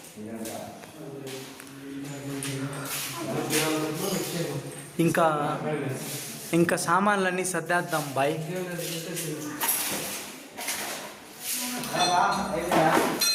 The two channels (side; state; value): both; identical; correlation 1.00